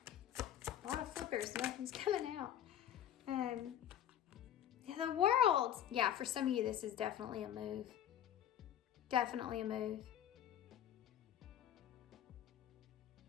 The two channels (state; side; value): quieter; right; 10.7 dB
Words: A lot of flippers, nothing's coming out. The World. Yeah, for some of you, this is definitely a move. Definitely a move.